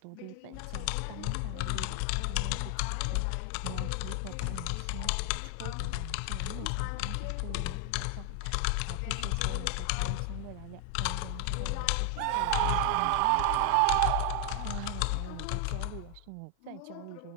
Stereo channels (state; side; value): different; both; correlation 0.00